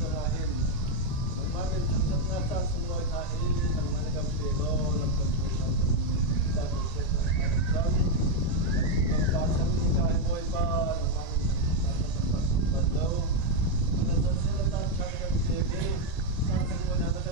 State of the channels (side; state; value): right; late; 1.8 ms